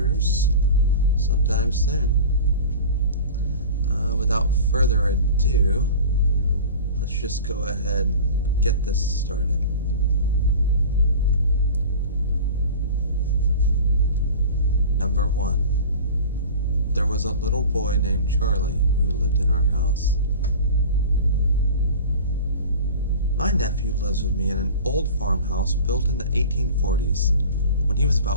sometime soon. Without further ado, let's just go ahead and get this started. Number 1. There was a little boy named Charlie who lived in our house. My nephew lives with me in an old farmhouse built in the 1840s. When he was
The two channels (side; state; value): both; inverted; correlation -0.37